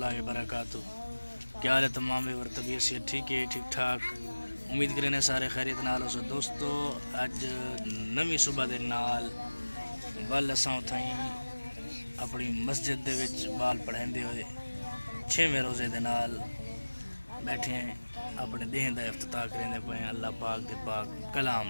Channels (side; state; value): both; inverted; correlation -1.00